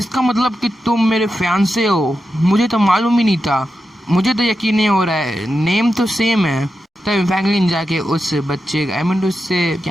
मतलब कि तुम मेरे फियांसे हो? मुझे तो मालूम ही नहीं था, मुझे तो यकीन नहीं हो रहा है, नेम तो सेम है। तभी फैंगलिन जाके उस बच्चे उससे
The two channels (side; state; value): both; normal; correlation 0.89